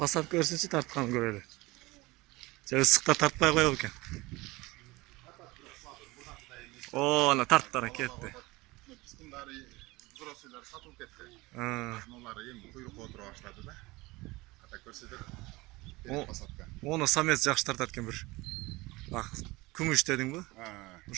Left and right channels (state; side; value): quieter; left; 21.8 dB